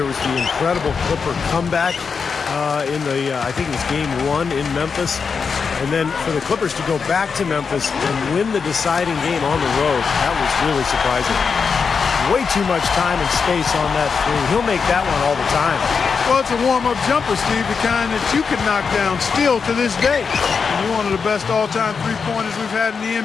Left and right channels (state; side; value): quieter; right; 5.6 dB